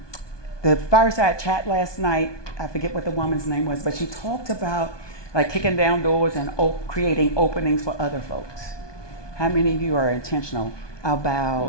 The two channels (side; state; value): right; late; 1.2 ms